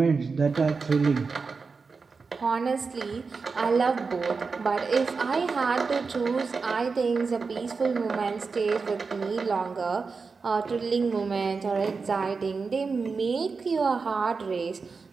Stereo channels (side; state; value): left; quieter; 4.7 dB